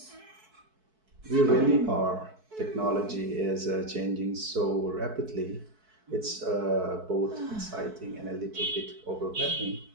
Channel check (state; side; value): late; left; 4.6 ms